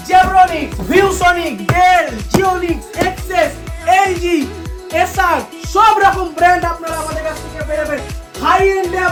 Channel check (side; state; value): both; identical; correlation 1.00